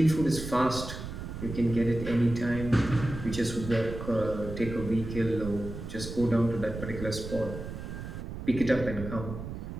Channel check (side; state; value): right; noise; rumble, 8 dB below the sound